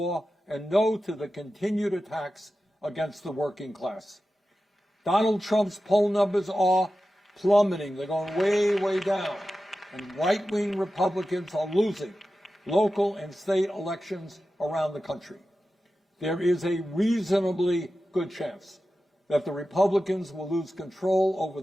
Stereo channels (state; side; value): normal; both; correlation 0.93